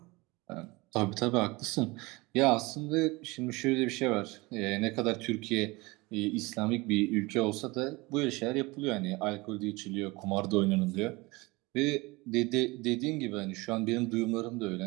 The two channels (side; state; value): left; quieter; 23.6 dB